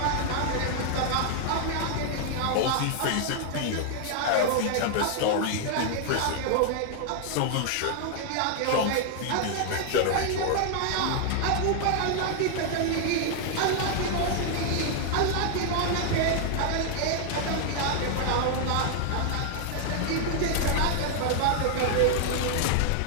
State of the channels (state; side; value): different; both; correlation 0.00